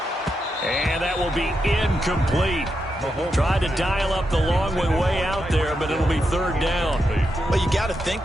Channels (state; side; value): normal; both; correlation 0.85